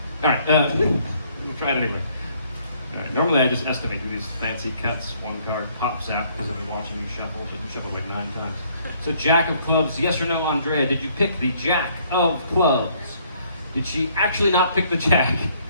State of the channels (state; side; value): inverted; both; correlation -0.64